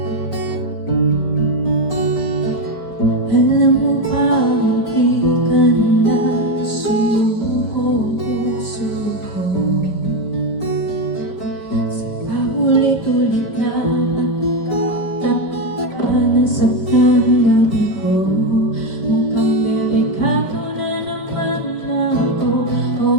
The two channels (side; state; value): right; late; 5.3 ms